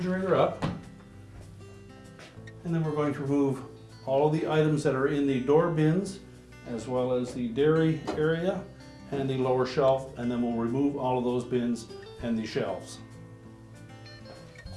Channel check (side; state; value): both; identical; correlation 1.00